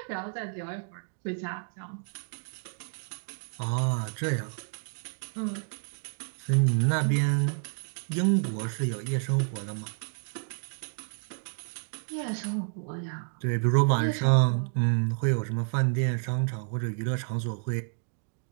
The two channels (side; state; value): left; silent; digital silence